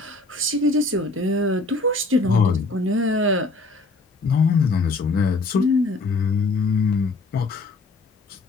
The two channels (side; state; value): right; quieter; 3.3 dB